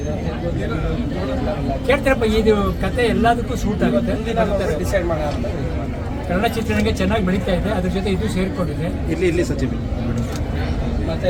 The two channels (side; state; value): both; identical; correlation 1.00